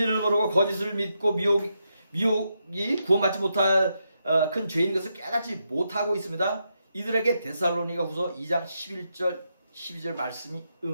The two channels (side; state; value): both; inverted; correlation -0.83